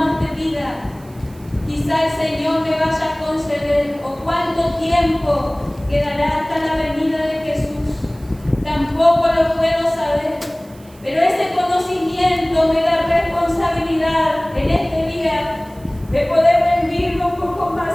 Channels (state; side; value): noise; right; hiss, 26 dB below the sound